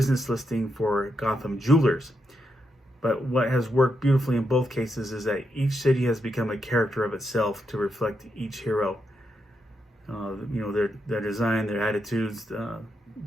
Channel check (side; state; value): both; normal; correlation 0.83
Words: listing for Gotham Jewelers. But what has worked beautifully in both cases is that each city has become a character of itself to reflect each hero. Their design, their attitudes,